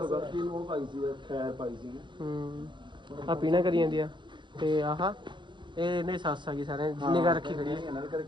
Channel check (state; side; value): late; left; 0.23 ms